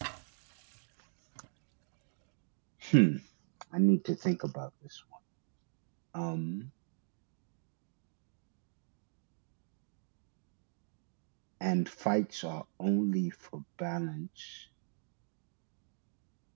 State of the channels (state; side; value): silent; left; digital silence